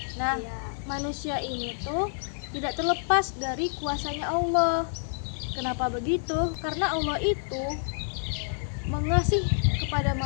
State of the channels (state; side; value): silent; right; digital silence